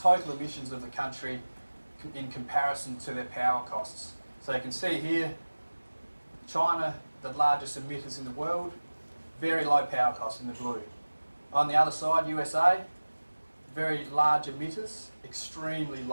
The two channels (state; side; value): inverted; both; correlation -1.00